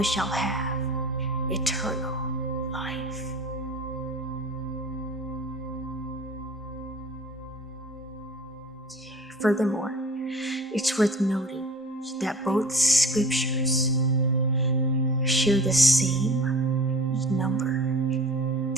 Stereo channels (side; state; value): both; normal; correlation 0.42